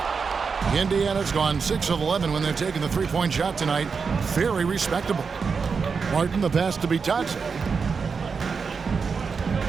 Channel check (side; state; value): left; quieter; 5.4 dB